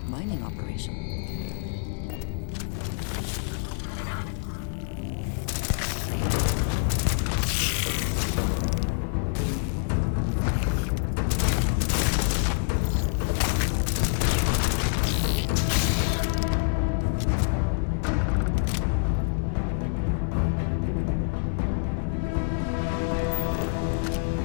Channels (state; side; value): silent; right; 59 dB below the other